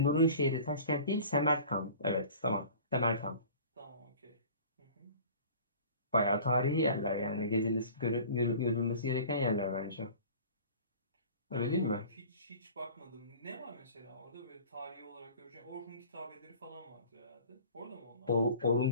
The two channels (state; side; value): inverted; both; correlation -0.44